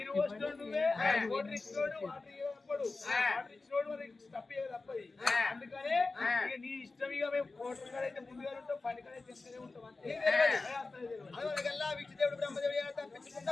పోసినోడు నువ్వే వాటర్ ఇచ్చినోడు వాటర్ ఇచ్చినోడు తప్పే తప్పది అందుకనే ఇక నీ ఇష్టం ఇక మేము కోటర్ కాడ అయితే ముందుగా ఉంటాం పని కాడ చెప్తూనే ఉంటాం అంతే విష్ణుదేవుడు బ్రహ్మదేవుడు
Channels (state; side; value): quieter; right; 3.7 dB